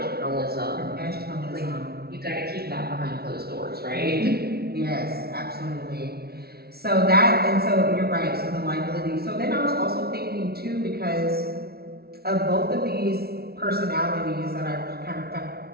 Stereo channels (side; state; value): left; late; 0.45 ms